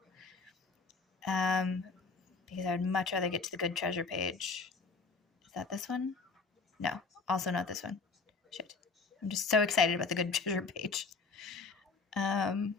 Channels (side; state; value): right; quieter; 4.4 dB